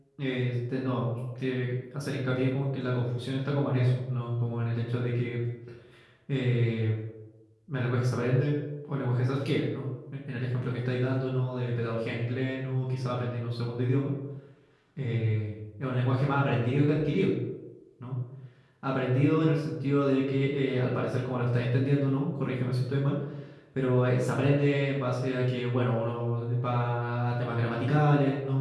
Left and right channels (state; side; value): identical; both; correlation 1.00